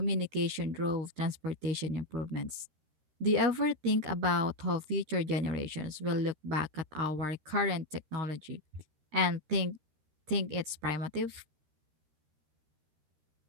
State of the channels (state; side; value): late; left; 13 ms